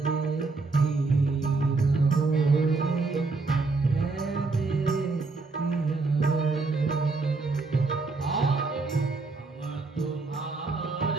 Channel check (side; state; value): left; quieter; 3.8 dB